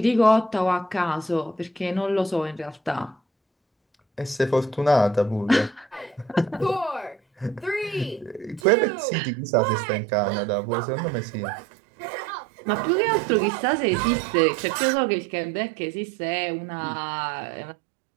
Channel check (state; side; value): drops out; left; at 8.7 s